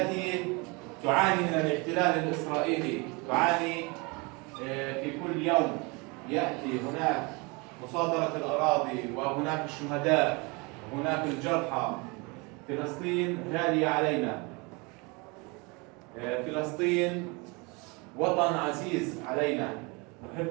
تعاني من الاحتلال الإسرائيلي، تعاني في كل يوم يأتي هناك مصادرة الأراضي وهناك الشهداء وهناك الجرحى. فلسطين غالية علينا، فلسطين وطن عزيز علينا،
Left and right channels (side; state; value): left; quieter; 28.3 dB